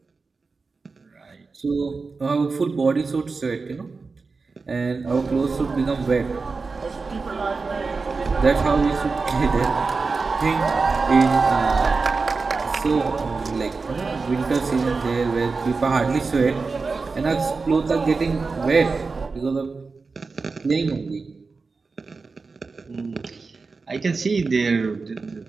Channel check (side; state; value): left; quieter; 4.3 dB